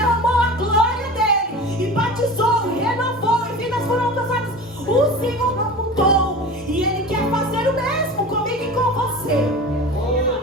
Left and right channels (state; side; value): normal; both; correlation 0.34